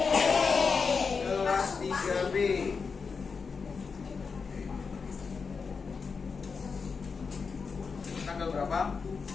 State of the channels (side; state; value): right; quieter; 5.2 dB